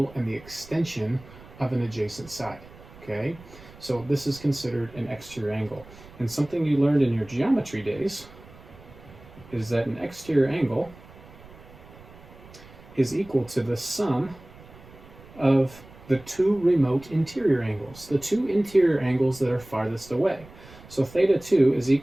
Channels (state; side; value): noise; right; rumble, 21 dB below the sound